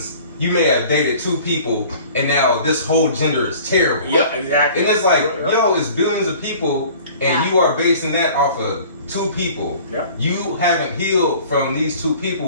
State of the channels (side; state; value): both; inverted; correlation -0.47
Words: You may have dated two people, and now this whole gender is terrible. Yeah, exactly. And it's like, yo, it's billions of people, and you are basing that off of two people. Yeah. You haven't healed from these two